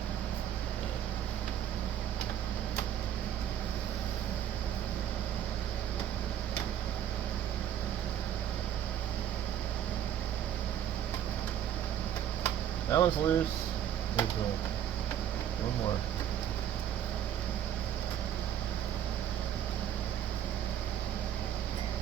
That one's loose. There's one more.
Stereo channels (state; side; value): quieter; left; 10.2 dB